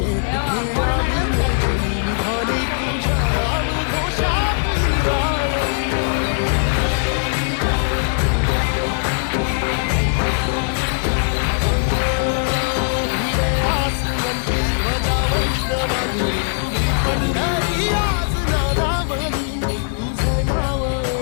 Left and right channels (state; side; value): silent; right; digital silence